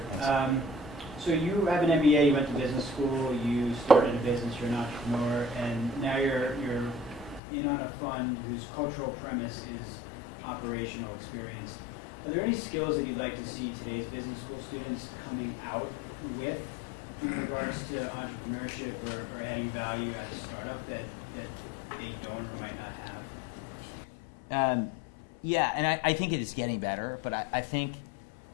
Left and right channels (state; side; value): drops out; right; at 7.4 s